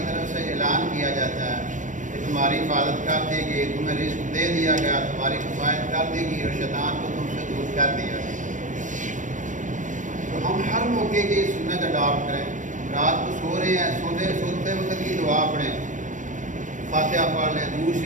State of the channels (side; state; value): left; late; 0.37 ms